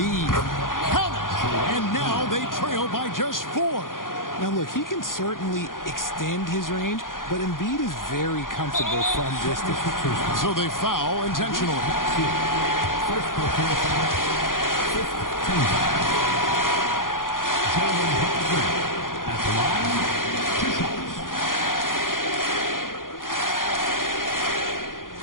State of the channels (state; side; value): late; right; 0.90 ms